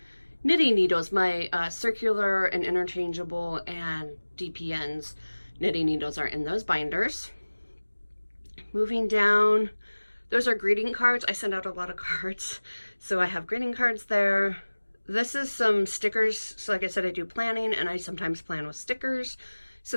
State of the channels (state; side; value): inverted; both; correlation -1.00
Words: knitting needles, my circular and interchangeable and DPNs knitting needles are in those binders. Moving down, those are greeting cards. I send out a lot of cards, so I have greeting cards there. This is some stickers. So like I said, I do planning and I sometimes plan with stickers.